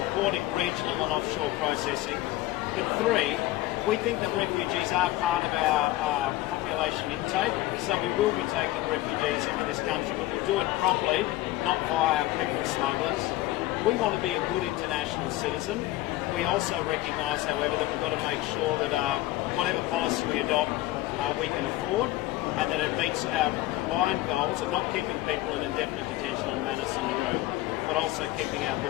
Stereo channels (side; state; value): right; quieter; 16.5 dB